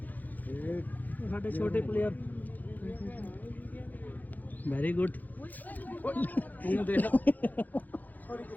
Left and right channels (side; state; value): right; late; 0.083 ms